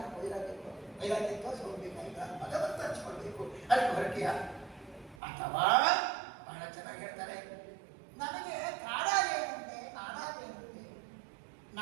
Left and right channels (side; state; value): left; drops out; at 5.2 s